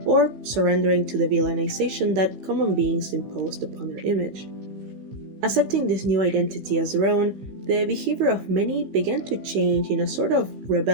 or surrendering to the villainization that common beings imposed upon their image. Accepting this new identity as their own, the behavior of many began to change in a sort of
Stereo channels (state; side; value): late; left; 15 ms